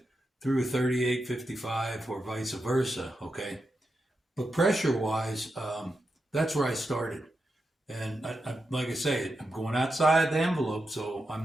through a 3855 or vice versa, okay? But pressure-wise, that's where I started. And I, like I say, I'm going outside the envelope, so I'm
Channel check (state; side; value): normal; both; correlation 0.87